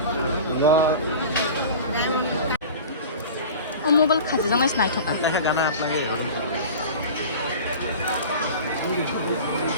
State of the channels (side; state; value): both; inverted; correlation -0.36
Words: Mobile খাজি জং নাই থকা দেখা গানা আপনাকে